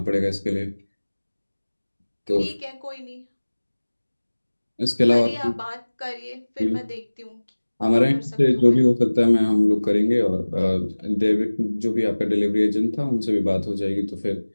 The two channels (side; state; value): both; inverted; correlation -1.00